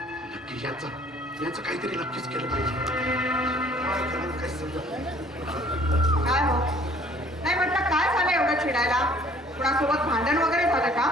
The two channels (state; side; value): normal; both; correlation 0.56